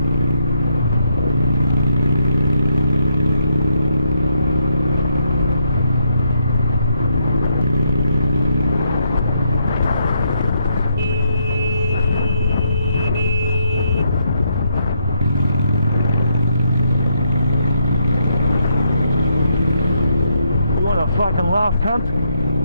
Fucking laugh, cunt.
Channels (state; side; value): inverted; both; correlation -0.76